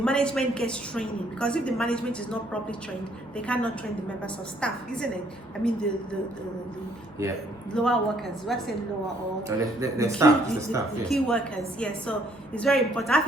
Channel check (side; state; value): both; normal; correlation 0.66